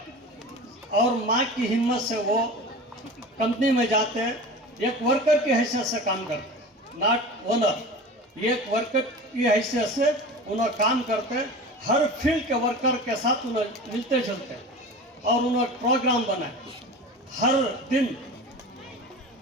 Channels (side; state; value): both; normal; correlation 0.34